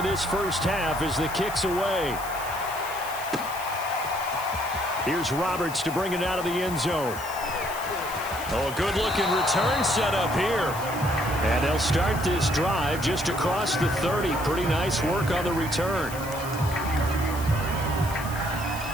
this first half as the kick's away. Here's Roberts to bring it out of the end zone. Oh, a good-looking return set up here. And they'll start this drive just across the 30. Pretty nice work on the return.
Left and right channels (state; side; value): noise; left; hiss, 13 dB below the sound